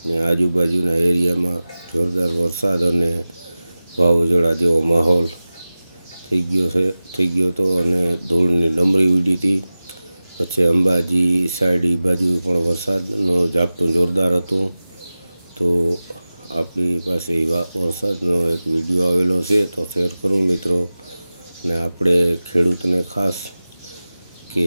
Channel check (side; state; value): both; inverted; correlation -0.96